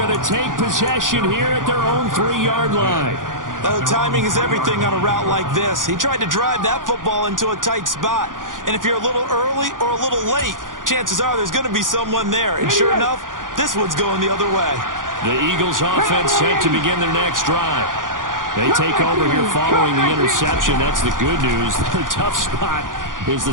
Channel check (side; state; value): left; late; 0.89 ms